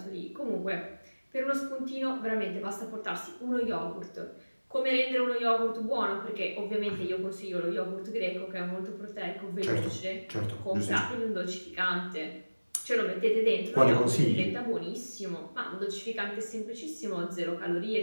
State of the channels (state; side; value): inverted; both; correlation -1.00